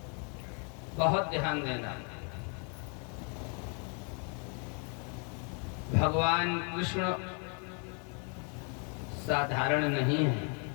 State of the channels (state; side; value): quieter; right; 38.0 dB